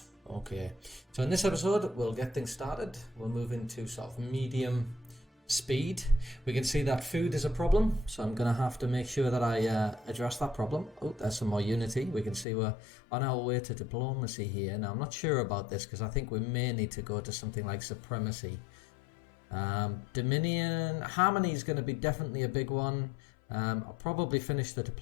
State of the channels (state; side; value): drops out; right; at 12.5 s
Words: Okay, so in this episode, we'll get things started. We'll move into sort of medium speed. We can see that food is a problem, so I'm going to have to make sure that I address that problem. Oh, there's some more unity. We can see we're on our way to diplomacy here. Now, I'm not sure about this because I think we may need to go to something like supremacy. Dominion, harmony is going to be definitely a big one. I'll probably finish the